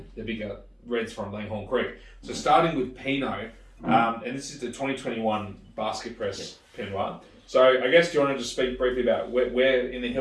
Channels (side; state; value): both; identical; correlation 1.00